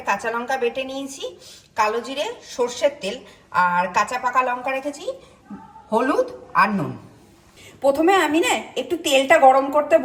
কাঁচা লঙ্কা বেটে নিয়েছি, কালো জিরে, সর্ষের তেল আর কাঁচা পাকা লঙ্কা রেখেছি, হলুদ আর নুন। প্রথমে আমি না একটু তেলটা গরম করতে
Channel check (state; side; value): identical; both; correlation 1.00